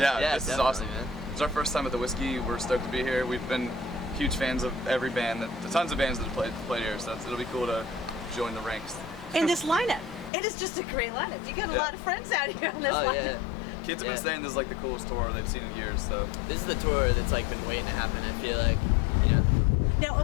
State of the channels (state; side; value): drops out; right; at 10.3 s